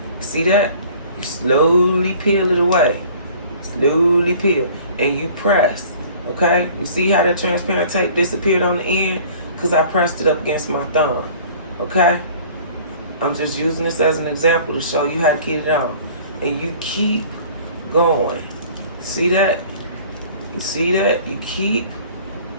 See that? You slowly peel it away. Slowly peel. And you press. Okay? You see how that transparent tape disappeared on the end? Because I pressed it up against my thumb. Okay? I'm just using this as an example to show you how to keep it on. And you keep going. See that? You see that? You keep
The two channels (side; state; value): both; inverted; correlation -0.49